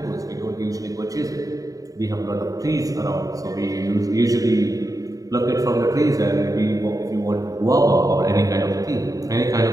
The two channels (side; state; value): left; late; 0.17 ms